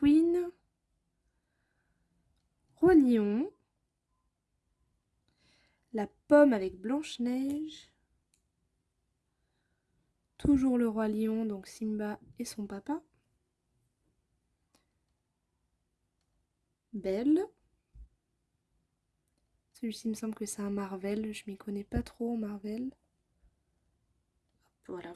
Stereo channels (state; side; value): identical; both; correlation 1.00